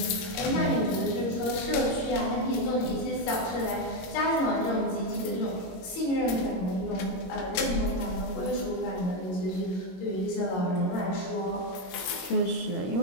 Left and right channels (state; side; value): late; right; 22 ms